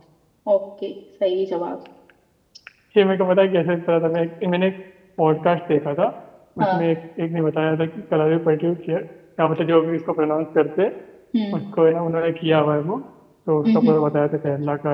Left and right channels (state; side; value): identical; both; correlation 1.00